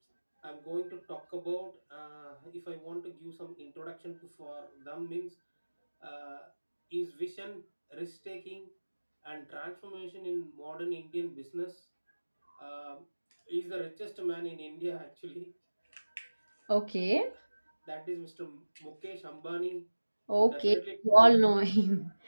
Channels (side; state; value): both; inverted; correlation -1.00